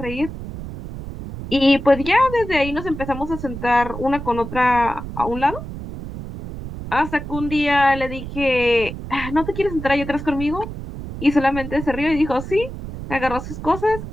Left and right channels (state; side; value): noise; right; rumble, 9 dB below the sound